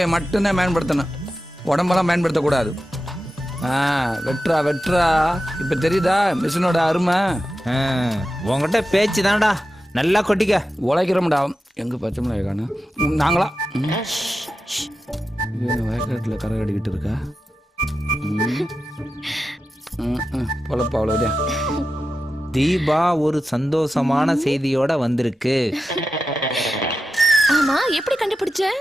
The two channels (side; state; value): both; normal; correlation 0.91